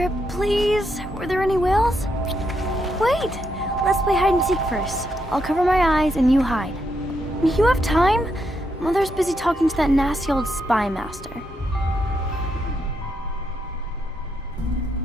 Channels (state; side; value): normal; both; correlation 0.80